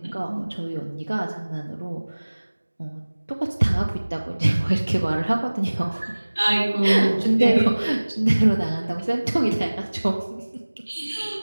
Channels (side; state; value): both; inverted; correlation -1.00